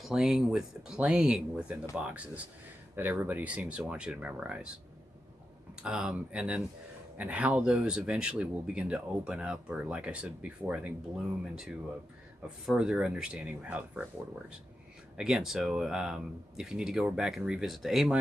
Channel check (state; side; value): normal; both; correlation 0.89